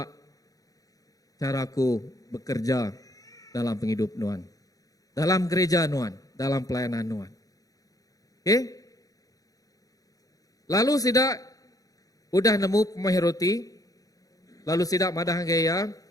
cara aku bekerja dalam penghidup Nuan. Dalam gereja Nuan, dalam pelayanan Nuan. Lalu sidak, udah nemu pemahir roti, lalu sidak madah gaya.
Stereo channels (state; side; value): late; right; 0.17 ms